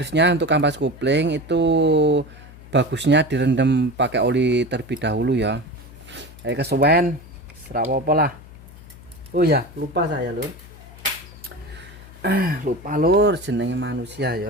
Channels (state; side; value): noise; left; hum, 19 dB below the sound